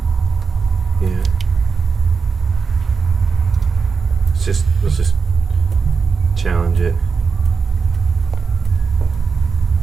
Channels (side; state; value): left; quieter; 5.3 dB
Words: Yeah. Let's just challenge it.